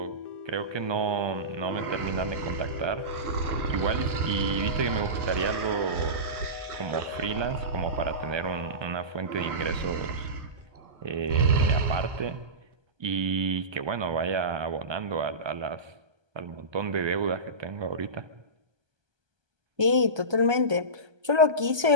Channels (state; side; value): late; left; 1.2 ms